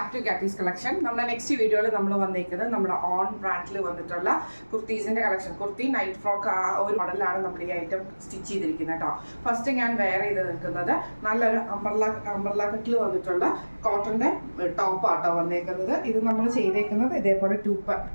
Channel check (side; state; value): both; inverted; correlation -1.00